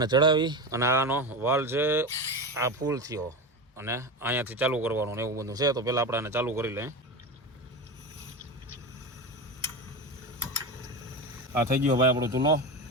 ચડાવી અને આનો વાલ છે આ ફૂલ થયો અને અહીંયાથી ચાલુ કરવાનું ને એવું બધું છે તો પહેલાં આપણે આને ચાલુ કરી લઈએ. આ થઈ ગયો ભાઈ આપણો ચૂલો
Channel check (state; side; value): normal; both; correlation 0.22